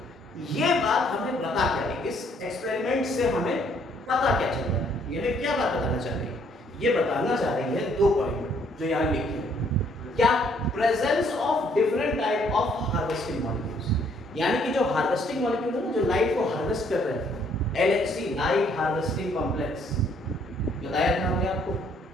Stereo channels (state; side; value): normal; both; correlation 0.66